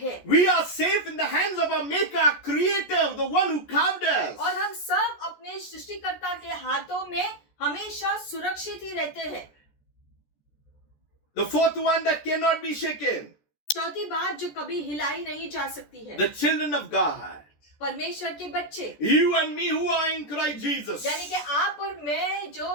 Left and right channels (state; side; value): late; right; 14 ms